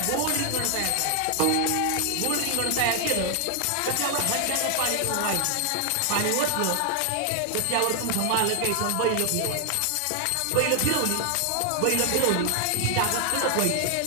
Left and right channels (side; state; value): both; different; correlation 0.00